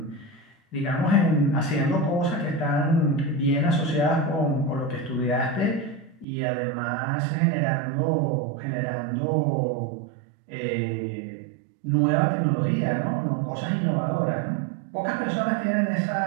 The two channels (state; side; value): drops out; left; at 6.2 s